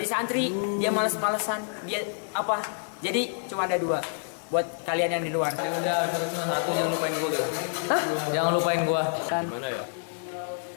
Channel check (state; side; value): silent; right; digital silence